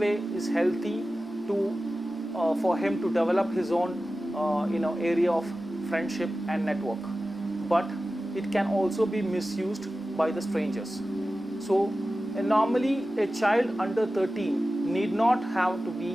is healthy to for him to develop his own area of friendship and network, but it can also be misused by the strangers. So normally a child under 13 need not have to be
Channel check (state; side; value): normal; both; correlation 0.95